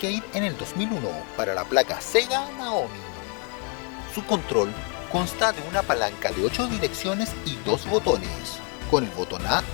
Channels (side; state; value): right; quieter; 38.0 dB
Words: en el 2001 para la placa Sega Naomi. Su control consta de una palanca de 8 direcciones y 2 botones. Con el botón A